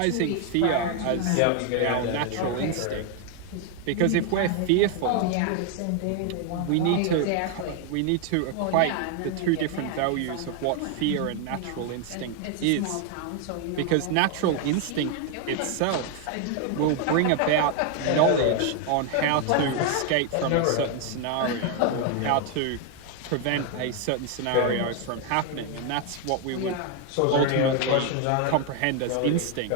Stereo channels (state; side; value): different; both; correlation 0.00